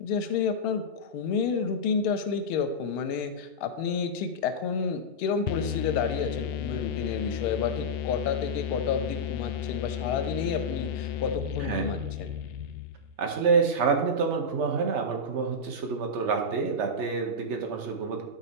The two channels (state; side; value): late; left; 2.8 ms